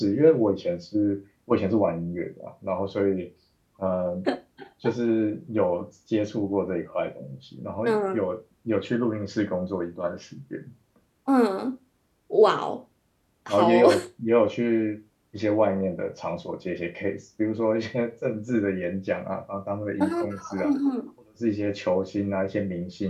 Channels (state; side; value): identical; both; correlation 1.00